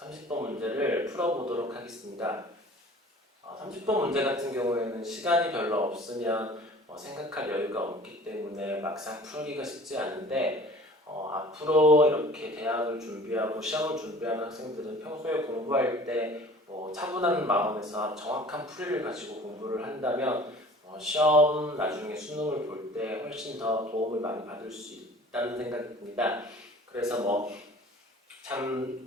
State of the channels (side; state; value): both; normal; correlation 0.46